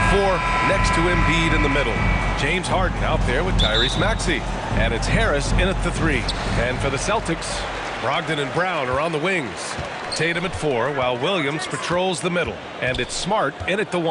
4, next to Embiid in the middle. James Harden out there with Tyrese Maxey. And it's Harris in at the 3. And for the Celtics, Brogdon and Brown are on the wings. Tatum at 4, while Williams patrols the middle. And it's Smart in at the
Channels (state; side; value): identical; both; correlation 1.00